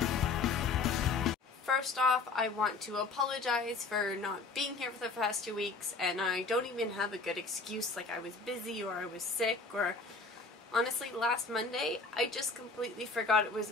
First off, I want to apologize for not being here for the past 2 weeks, and I don't even have a good excuse like I was busy or I was sick, or honestly last Monday I just completely forgot it was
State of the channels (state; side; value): quieter; right; 4.0 dB